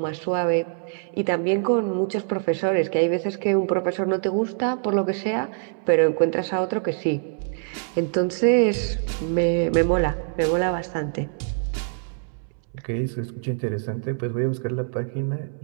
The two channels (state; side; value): silent; left; 62 dB below the other